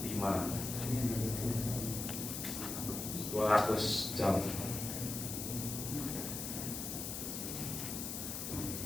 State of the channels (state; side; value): noise; left; hiss, 5 dB below the sound